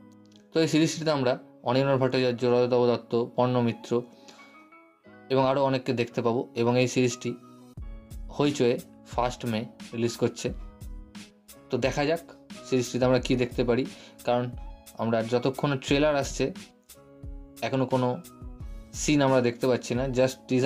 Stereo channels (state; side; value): identical; both; correlation 1.00